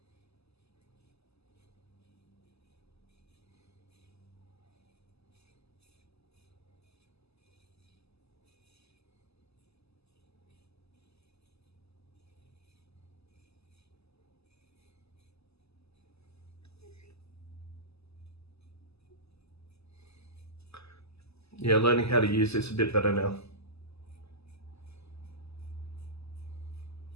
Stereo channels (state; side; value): late; right; 0.79 ms